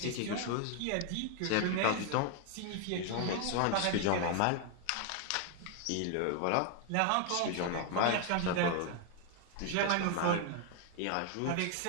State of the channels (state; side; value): different; both; correlation 0.00